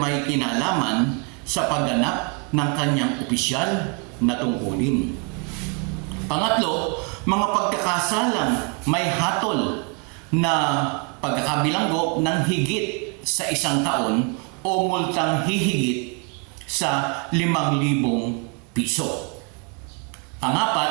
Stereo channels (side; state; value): left; quieter; 36.0 dB